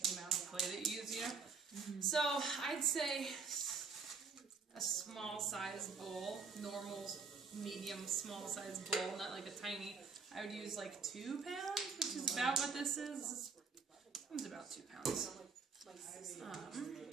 the amount of clay that you use, you know? So, I'd say a small size bowl, normal, medium, small size bowl, not like a tiny. I would use like 2 pounds, which is about what this is. It's about 2 pounds.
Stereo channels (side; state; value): left; quieter; 5.0 dB